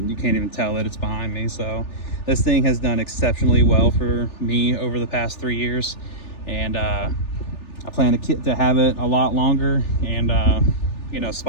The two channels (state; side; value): late; right; 3.4 ms